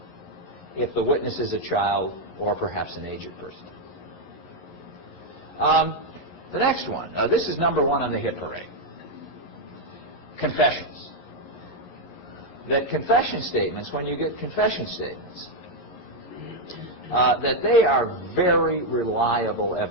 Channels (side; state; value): right; late; 11 ms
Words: if the witness is a child or perhaps an aged person. The next one, this is number one on the hit parade. Confessions. That confession statements, when you get confession statements, that they are very reliable